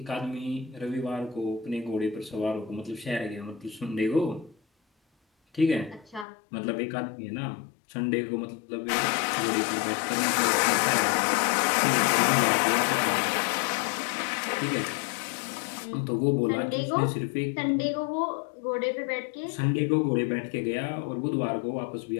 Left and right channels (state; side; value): drops out; right; at 6.2 s